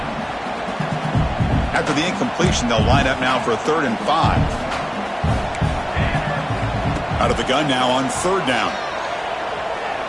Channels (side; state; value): both; identical; correlation 1.00